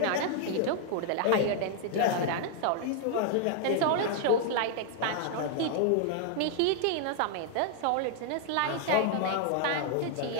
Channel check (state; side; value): different; both; correlation 0.00